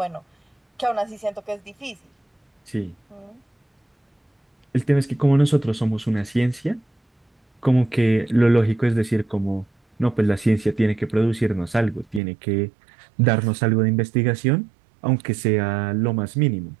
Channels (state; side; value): drops out; left; at 12.2 s